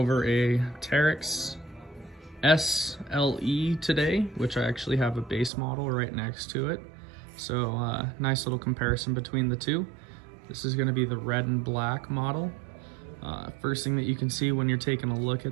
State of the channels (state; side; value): drops out; left; at 5.5 s